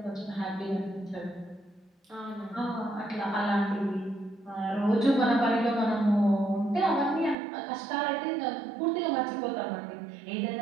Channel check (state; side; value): drops out; left; at 7.4 s